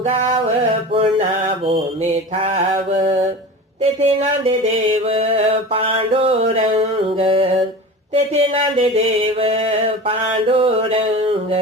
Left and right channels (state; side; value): normal; both; correlation 0.33